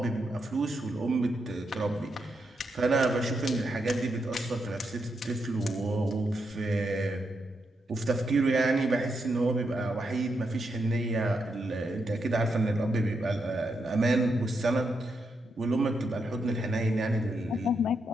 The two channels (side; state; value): both; normal; correlation 0.82